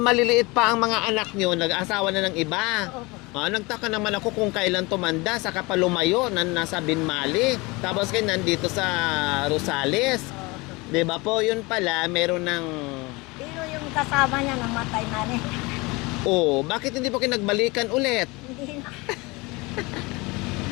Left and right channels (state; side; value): quieter; right; 24.7 dB